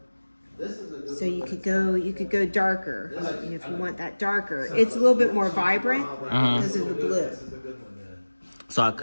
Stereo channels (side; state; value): both; inverted; correlation -1.00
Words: This is a good one. So you could go darker. And if you want that darker, it's a little bit more vibrant because of the blue. This is a good one then. So I